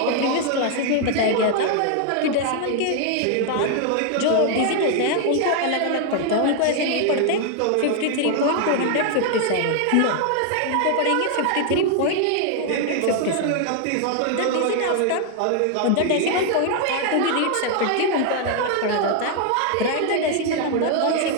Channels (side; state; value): both; different; correlation 0.00